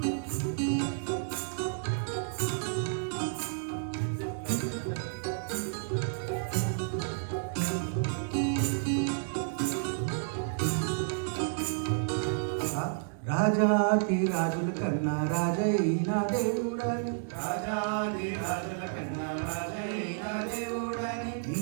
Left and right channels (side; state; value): left; silent; 57 dB below the other